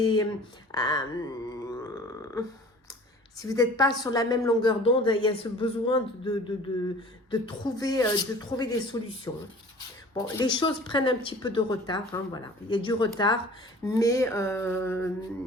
si vous n'êtes pas sur la même longueur d'onde, il y a ce besoin de trouver des solutions. Bon, les choses prennent un petit peu de retard, hein, voilà. Il y a du retard, mais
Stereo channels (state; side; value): normal; both; correlation 0.46